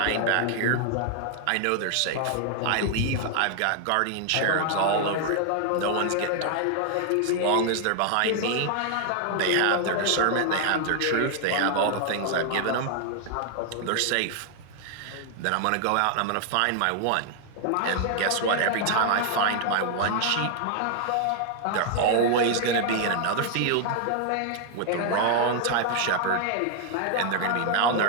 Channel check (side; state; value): both; different; correlation 0.00